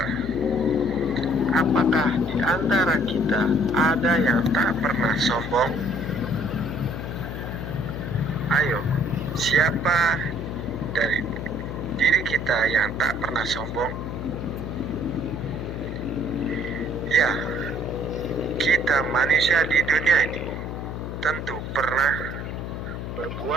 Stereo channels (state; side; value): noise; left; hum, 6 dB below the sound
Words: apakah di antara kita ada yang tak pernah sombong? Ayo, siapa dari diri kita yang tak pernah sombong? Ya, kita manusia di dunia ini tentu pernah